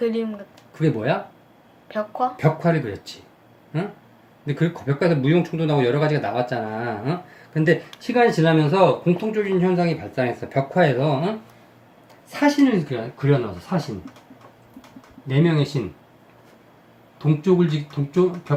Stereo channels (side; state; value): both; identical; correlation 1.00